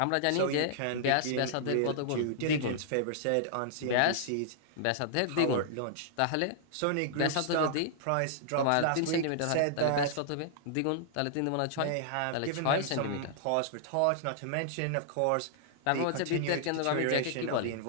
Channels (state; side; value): different; both; correlation -0.01